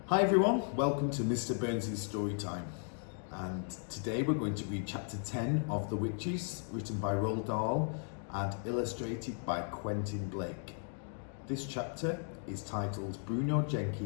Hi everyone, welcome to Mr. Burns' Storytime. And today we're going to read chapter 10 of The Witches, written by Roald Dahl and illustrated by Quentin Blake. This chapter is titled Bruno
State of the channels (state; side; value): silent; right; 54 dB below the other